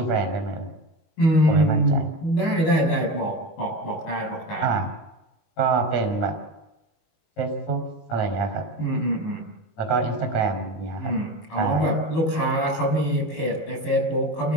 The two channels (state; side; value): late; right; 19 ms